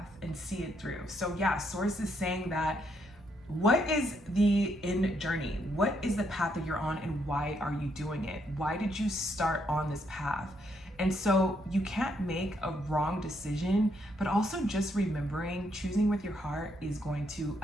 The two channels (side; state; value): both; normal; correlation 0.75